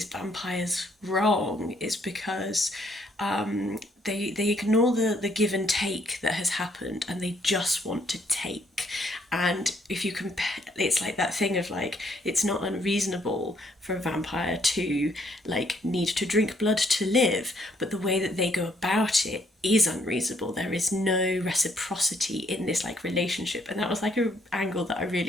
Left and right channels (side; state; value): both; normal; correlation 0.69